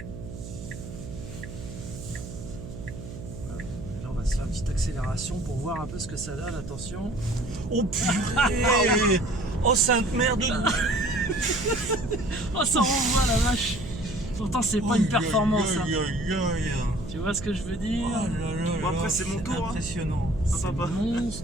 Là, on va se faire une petite accélération pour voir un peu ce que ça donne. Attention. Oh purée. Oh sainte merde. Oh, ça renvoie la vache. Pourtant, c'est pas une performance. Hein. Tu vois ce que je veux dire? Bon, après, c'est mon tour, hein. Impressionnant. C'est papa.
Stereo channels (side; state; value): right; noise; hum, 11 dB below the sound